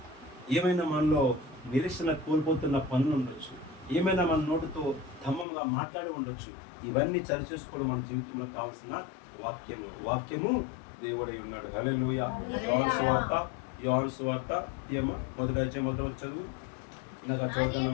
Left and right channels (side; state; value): right; drops out; at 5.5 s